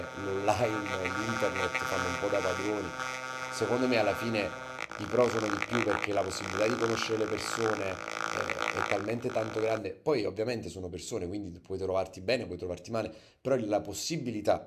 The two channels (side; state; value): both; identical; correlation 1.00